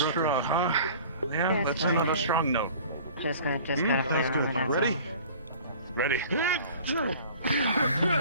straw, huh? Yeah, Yeah, that's fine. another strong note. Just gotta That's play good. around with it, Ready? Ready?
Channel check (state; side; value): inverted; both; correlation -0.45